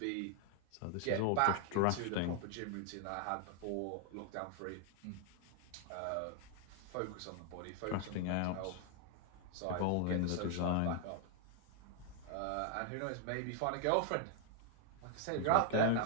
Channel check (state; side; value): different; both; correlation 0.00